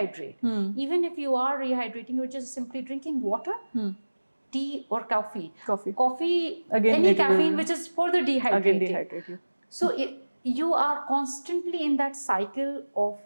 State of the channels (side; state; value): both; inverted; correlation -1.00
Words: Even if you are rehydrating, you're just simply drinking water, tea or coffee. Coffee, again, any caffeine which is further dehydrating. So you are constantly in that cycle of